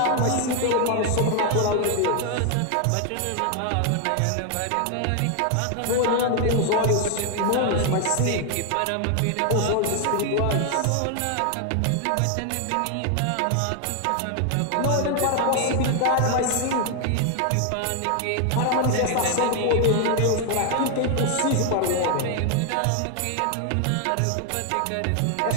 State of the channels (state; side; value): different; both; correlation 0.01